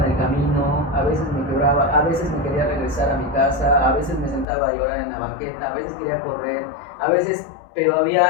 en el camino, a veces me quebraba, a veces me quería regresar a mi casa, a veces me sentaba a llorar en la banqueta, a veces quería correr, pero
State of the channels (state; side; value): drops out; right; at 4.5 s